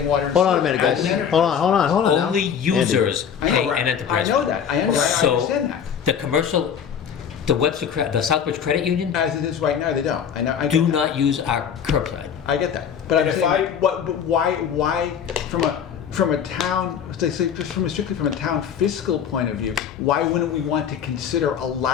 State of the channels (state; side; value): quieter; right; 7.9 dB